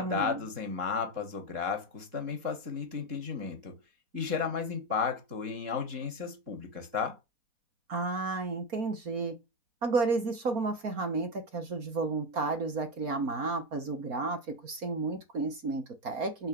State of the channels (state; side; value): late; left; 4.4 ms